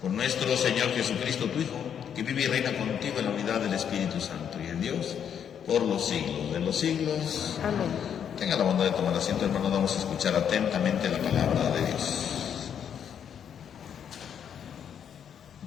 Por nuestro Señor Jesucristo, tu Hijo, que vive y reina contigo en la unidad del Espíritu Santo y en Dios por los siglos de los siglos. Amén. Tenga la bondad de tomar asiento, hermanos. Vamos a escuchar atentamente la palabra de Dios.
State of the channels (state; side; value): quieter; right; 8.4 dB